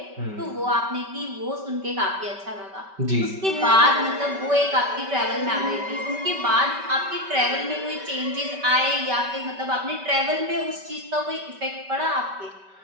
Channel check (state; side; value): late; left; 5.2 ms